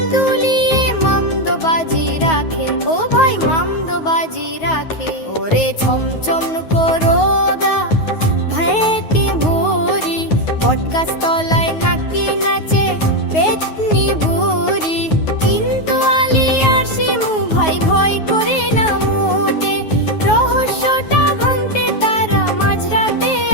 দুলিয়ে মামদোবাজি রাখে। ও ভাই মামদোবাজি রাখে। ওরে ছমছম করো গা ভাইতে ভুরি, বটগাছ তলায় নাকি নাচে পেতনি বুড়ি। কিন্তু আলী আর শিমু ভাই ভয় করে না মোটে, রহস্যটা ভাঙতে তারা মাঝরাতে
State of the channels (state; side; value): late; right; 9.4 ms